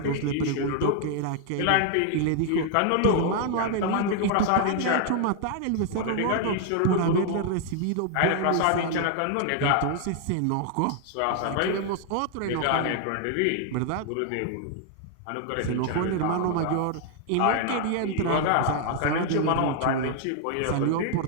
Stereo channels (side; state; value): both; different; correlation 0.00